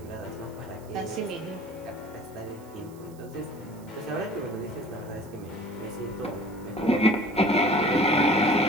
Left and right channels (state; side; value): noise; right; hiss, 25 dB below the sound